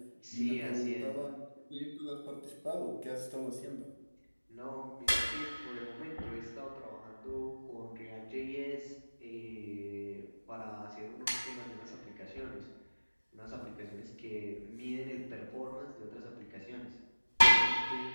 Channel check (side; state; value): both; inverted; correlation -1.00